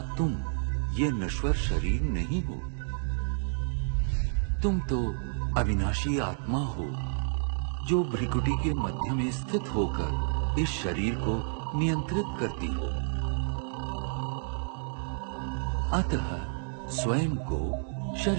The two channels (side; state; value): left; silent; digital silence